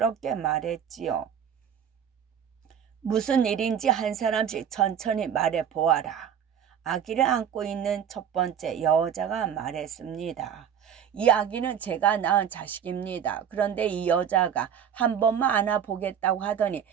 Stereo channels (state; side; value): quieter; left; 8.4 dB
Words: 말했지요. 무슨 일인지 한 사람씩 천천히 말해보아라. 아기를 안고 있는 첫 번째 여자가 말했습니다. 이 아기는 제가 낳은 자식입니다. 그런데 이 여자가 한 번만 안아보겠다고 하더니